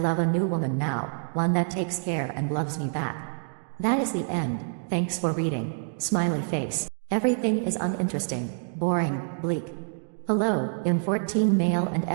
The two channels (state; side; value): silent; left; digital silence